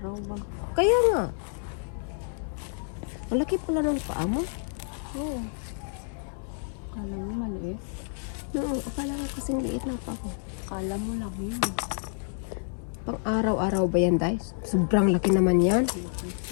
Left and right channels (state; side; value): silent; right; 59 dB below the other